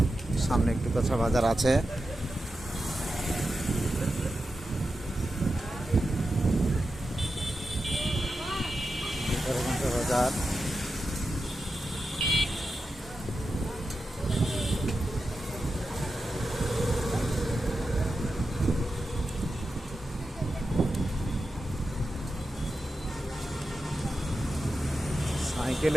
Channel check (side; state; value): both; normal; correlation 0.90